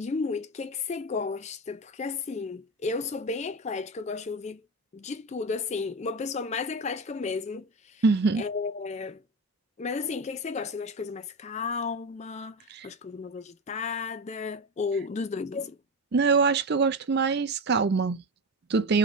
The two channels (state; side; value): normal; both; correlation 0.20